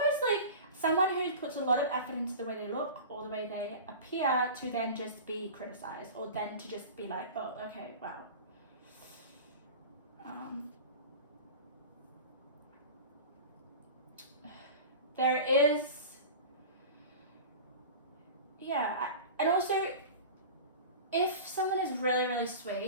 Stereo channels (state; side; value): inverted; both; correlation -0.34